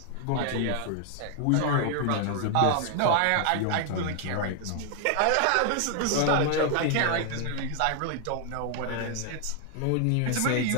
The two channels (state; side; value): different; both; correlation 0.00